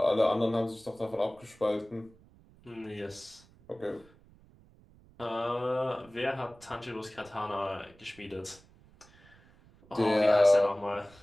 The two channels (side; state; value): right; noise; rumble, 26 dB below the sound